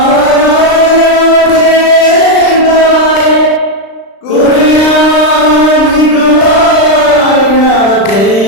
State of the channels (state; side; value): late; right; 36 ms